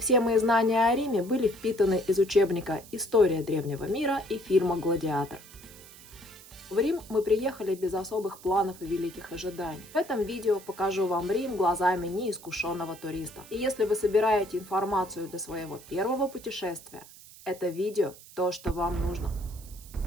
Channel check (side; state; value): right; noise; hiss, 20 dB below the sound